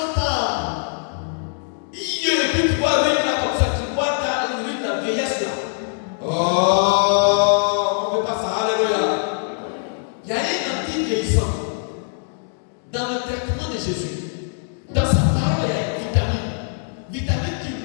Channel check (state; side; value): silent; right; digital silence